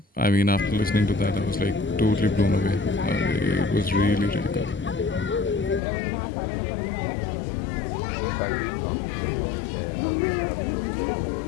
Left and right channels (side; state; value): right; drops out; at 5.8 s